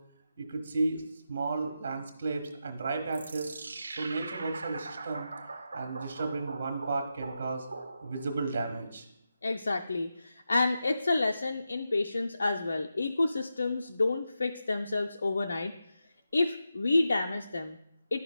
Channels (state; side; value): inverted; both; correlation -0.88